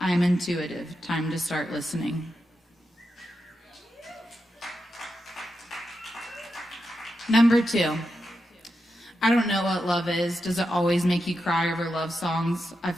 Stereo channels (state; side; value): normal; both; correlation 0.88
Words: I am intuitive. Time to start listening. Number 2. I don't know what love is. Does it always make you cry over love songs? I